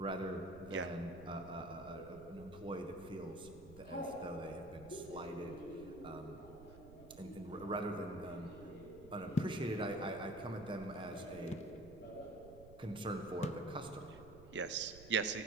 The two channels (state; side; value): noise; right; rumble, 16 dB below the sound